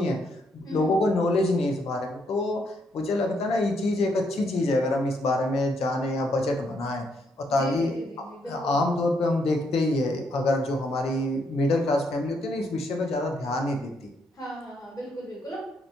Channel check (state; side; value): normal; both; correlation 0.74